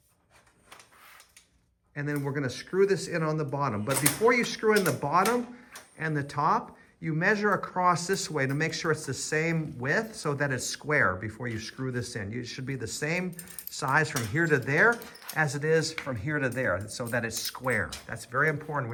and then we're gonna screw this in on the bottom. But before you screw in the bottom and the top, you measure across this way to make sure it's the same width so that it's square before you screw this in. It should be the same size from here to there as it is from here to there so that it's square. That's very important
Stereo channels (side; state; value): both; identical; correlation 1.00